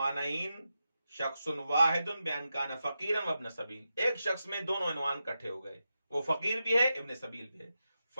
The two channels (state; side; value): inverted; both; correlation -0.89